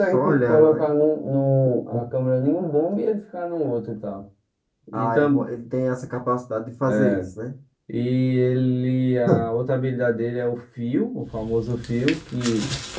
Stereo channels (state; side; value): identical; both; correlation 1.00